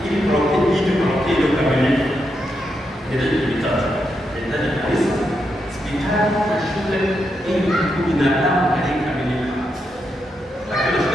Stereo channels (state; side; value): normal; both; correlation 0.83